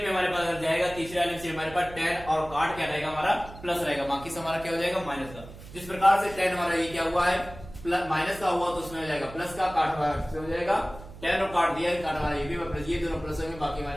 में हमारे पास अगर जाएगा, तीसरे वाले में से हमारे पास टेन और काट क्या रहेगा, हमारा प्लस रहेगा, बाकी से हमारा क्या हो जाएगा, माइनस का। जिस प्रकार से टेन हमारा ये क्या हुआ है, प्लस माइनस का हुआ, तो उसमें हो जाएगा प्लस का, काट हमारा हो जाएगा, टेन और काट दिया, काट हमारा ये भी प्लस, ये दोनों प्लस होंगे, बाकी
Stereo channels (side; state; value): right; noise; hum, 16 dB below the sound